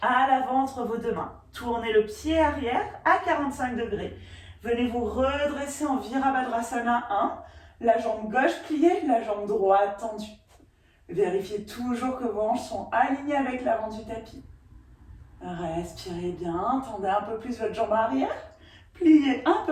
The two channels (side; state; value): both; identical; correlation 1.00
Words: à l'avant entre vos deux mains. Tournez le pied arrière à 45 degrés. Venez vous redresser en Virabhadrasana 1. La jambe gauche pliée, la jambe droite tendue. Vérifiez toujours que vos hanches sont alignées avec l'avant du tapis. Respirez bien, tendez un peu plus votre jambe arrière. Pliez un